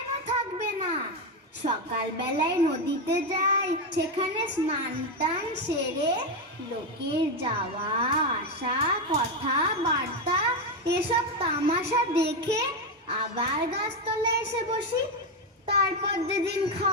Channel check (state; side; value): normal; both; correlation 0.09